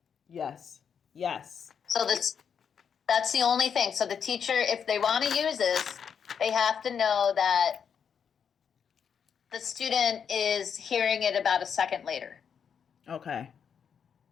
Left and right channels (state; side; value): quieter; right; 7.3 dB